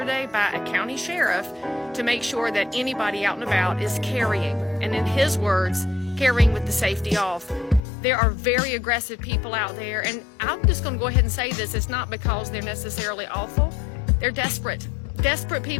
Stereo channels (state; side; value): drops out; right; at 7.9 s